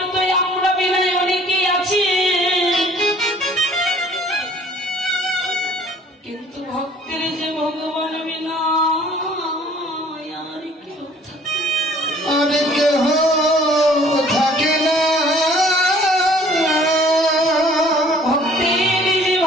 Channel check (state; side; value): normal; both; correlation 0.54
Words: তো আমরা বিনয় অনেকেই আছি, কিন্তু ভক্তের যে ভগবান বিনা আর কেউ থাকে? আরে কেহ থাকে না। ভক্তের যে